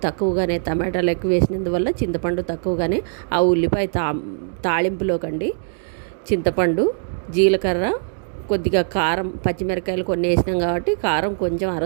తక్కువగానే, టమాటాలు ఎక్కువ వేసినందువల్ల చింతపండు తక్కువగానే, ఆ ఉల్లిపాయ తాళింపులోకండి చింతపండు, జీలకర్ర, కొద్దిగా కారం, పచ్చిమిరకాయలు కొన్ని వేసినాం కాబట్టి కారం కొంచెం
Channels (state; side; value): silent; left; digital silence